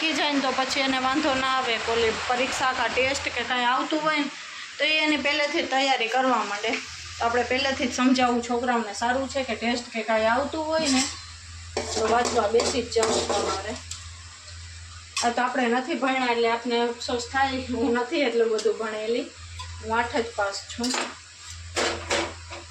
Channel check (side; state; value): both; identical; correlation 1.00